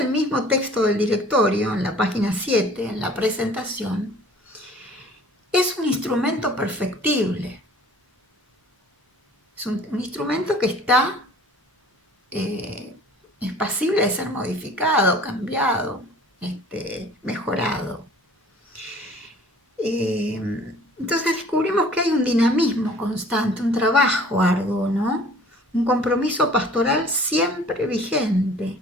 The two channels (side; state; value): both; normal; correlation 0.50